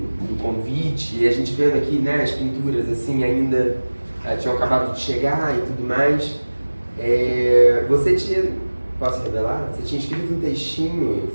convite, e a gente vendo aqui, né, as pinturas assim ainda tinham acabado de chegar e tudo mais. Você tinha, posso revelar? Você tinha escrito um textinho,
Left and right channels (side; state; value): both; inverted; correlation -1.00